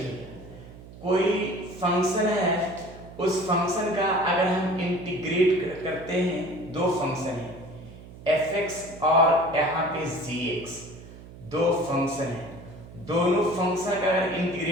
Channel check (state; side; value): noise; right; hum, 17 dB below the sound